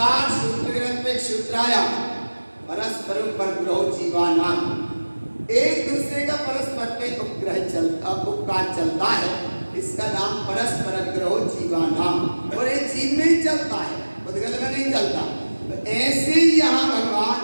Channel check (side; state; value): both; inverted; correlation -1.00